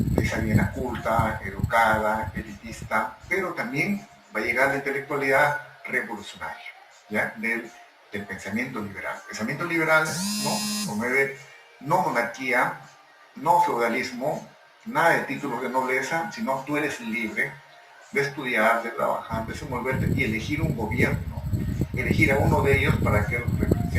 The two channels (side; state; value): both; identical; correlation 1.00